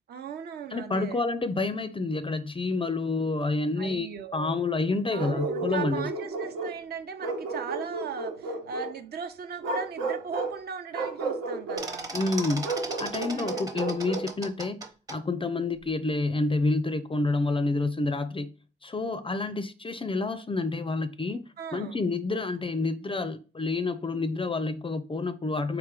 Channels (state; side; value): normal; both; correlation 0.58